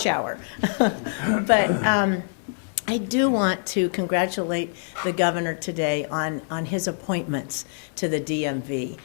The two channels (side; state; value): right; silent; digital silence